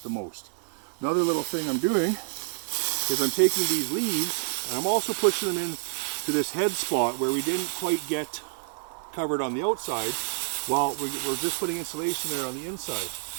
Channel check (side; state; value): left; silent; digital silence